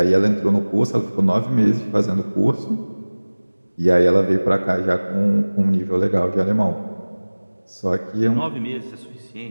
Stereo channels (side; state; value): both; inverted; correlation -1.00